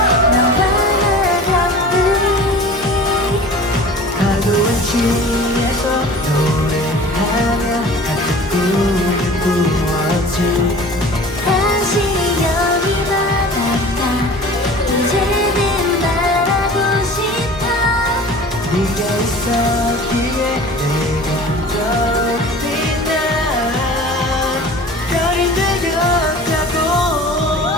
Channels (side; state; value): both; normal; correlation 0.41